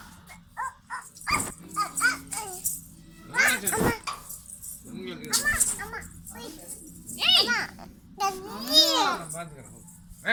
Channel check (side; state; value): both; identical; correlation 1.00